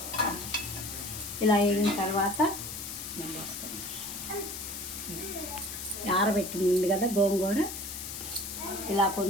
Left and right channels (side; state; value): left; noise; hiss, 7 dB below the sound